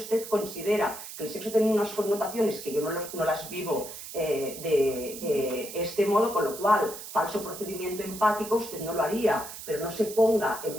considera que el sexo tiene unas connotaciones que yo no las vivo de este modo, con lo cual, falso procedimiento empático, usted no lo haría, pero no se ponga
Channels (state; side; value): noise; right; hiss, 11 dB below the sound